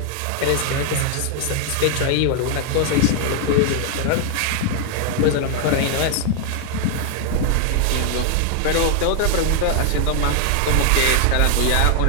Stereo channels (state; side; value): different; both; correlation 0.00